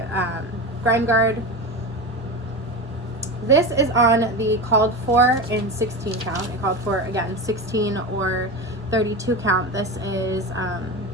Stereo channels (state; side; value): normal; both; correlation 0.23